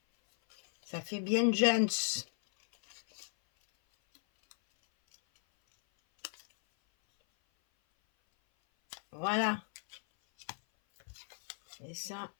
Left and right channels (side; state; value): right; silent; 55 dB below the other